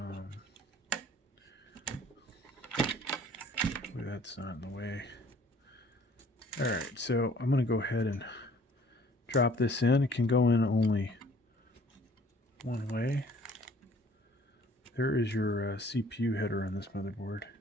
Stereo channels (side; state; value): both; normal; correlation 0.55